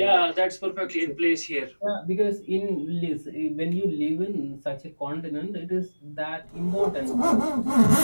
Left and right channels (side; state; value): both; inverted; correlation -1.00